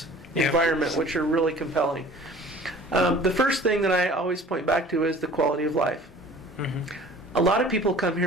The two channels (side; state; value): both; normal; correlation 0.47